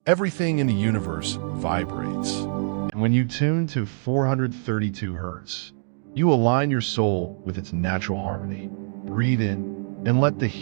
Everything in the universe vibrates. And when you tune to 432 hertz, you align your soul with its natural harmony. Breathe in and let the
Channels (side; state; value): left; silent; digital silence